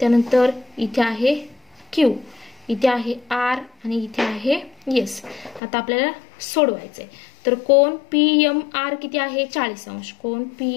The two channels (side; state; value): right; drops out; at 5.6 s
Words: इथे आहे Q, इथे आहे R आणि इथे आहे S. आता आपल्याला सोडवायचंय. तर कोन PMR किती आहे, 40 अंश. कोन